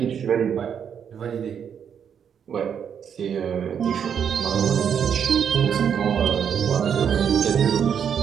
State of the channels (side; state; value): left; quieter; 7.9 dB